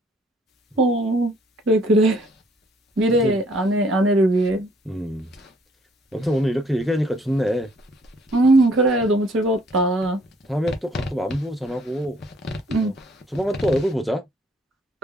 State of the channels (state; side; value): normal; both; correlation 0.63